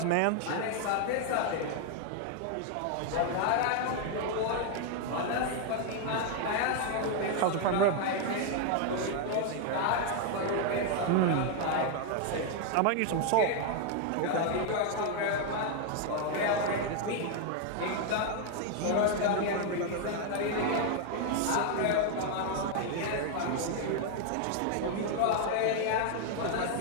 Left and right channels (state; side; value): different; both; correlation 0.00